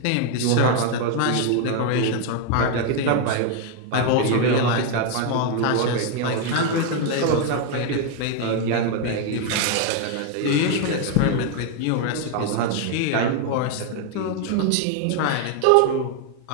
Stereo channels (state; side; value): different; both; correlation 0.01